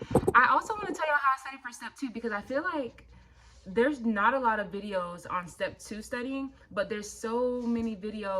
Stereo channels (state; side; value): identical; both; correlation 1.00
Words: I also want to tell y'all how I studied for step 2 because I feel like there's not a lot of videos on step 2 studying, but there's so many